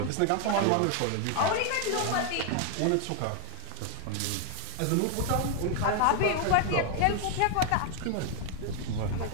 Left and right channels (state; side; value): different; both; correlation 0.00